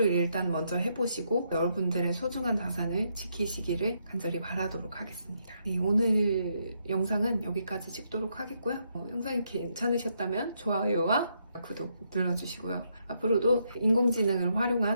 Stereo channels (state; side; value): inverted; both; correlation -0.77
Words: 일단 먼저 해보시고 여러분들의 소중한 자산을 지키시기를 간절히 바라도록 하겠습니다. 네, 오늘 영상은 여기까지 찍도록 하겠고요. 영상이 괜찮으셨다면 좋아요와 구독 눌러주시고요. 앞으로도 인공지능을